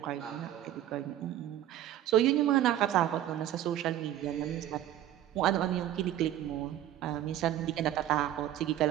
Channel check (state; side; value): quieter; left; 12.4 dB